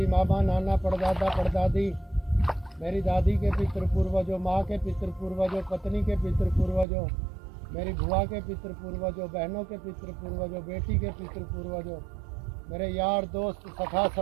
मामा नाना परदादा परदादी, मेरी दादी के पितृ पूर्वजों, माँ के पितृ पूर्वजों, पत्नी के पितृ पूर्वजों, मेरी बुआ के पितृ पूर्वजों, बहनों के पितृ पूर्वजों, बेटी के पितृ पूर्वजों, मेरे यार दोस्त सखा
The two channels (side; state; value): left; drops out; at 6.9 s